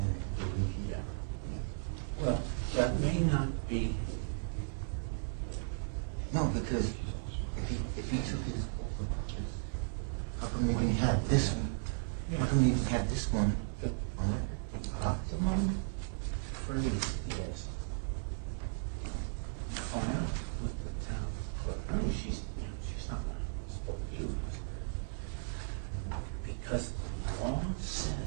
it. Well, that may not be. No, because if he took his how come you didn't have this one? How come you didn't have this one on it? Optimum phrase is file with the town clerk. I mean, she's not going to support you because the law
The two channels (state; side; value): silent; left; 54 dB below the other